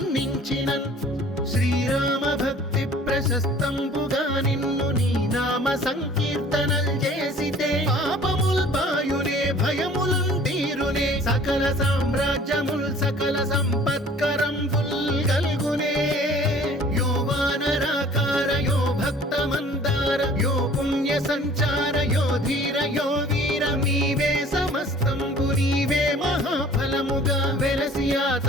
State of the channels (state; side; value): normal; both; correlation 0.50